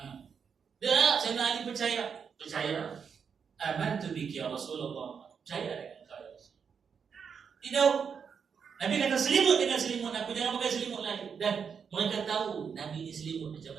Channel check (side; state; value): left; quieter; 6.6 dB